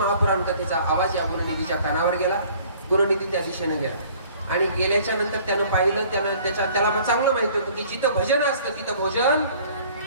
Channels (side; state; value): both; inverted; correlation -0.53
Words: कथेचा आवाज या गुणनिधीच्या कानावर गेला. गुणनिधी त्या दिशेने गेला आणि गेल्याच्या नंतर त्यानं पाहिलं, त्याला चांगलं माहिती होतं की जिथं भजन असतं तिथं भोजन